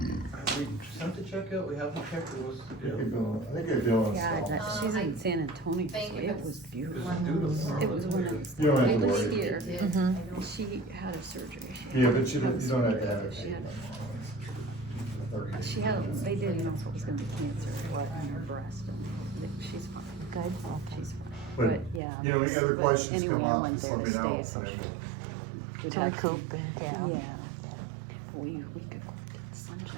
we sent the check out? We haven't checked, it was, I think you're doing God, stuff. that- she's in San Antonio, so Thank you. it was beautiful. beautiful. It was when it was, You don't have I to was worry. here, Mhm. and she had a surgery. She Yeah, had- but you don't have to have it. She had, she had, they didn't know if it was gonna be cancer or what in her breast, and she's fine. Good, okay. She's fine, But, but yeah. you know, any other questions Anyway, come I up, went just there let me to know, stay, so and then we'd To have recoup, yeah. Yeah. We could go get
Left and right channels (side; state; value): left; drops out; at 22.0 s